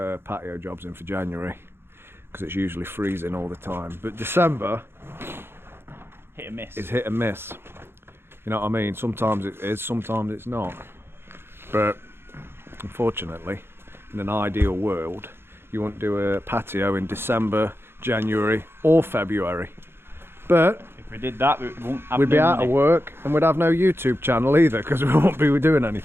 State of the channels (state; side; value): late; left; 0.11 ms